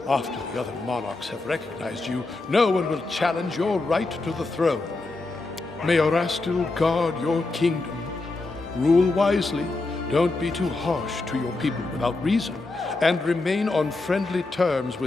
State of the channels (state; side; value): quieter; right; 3.3 dB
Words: after the other monarchs have recognized you, no one will challenge your right to the throne. May Orastil guard your kingdom. Rule wisely, don't be too harsh to your people without reason, and remain on friendly terms